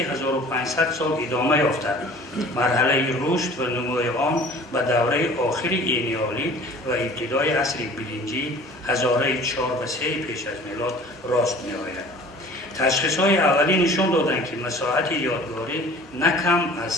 سال ادامه یافته. مرحله رشد و نمو آن به دوره آخر اینیالید و ابتدای عصر برنجی 1004 و 3 پیش از میلاد راست می آید. تشخیص‌های اولی نشان دادند که مساحت یادگاری نه کم از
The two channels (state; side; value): normal; both; correlation 0.47